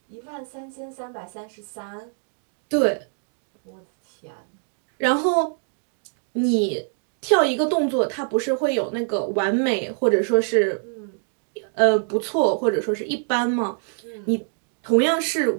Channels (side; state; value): left; silent; 62 dB below the other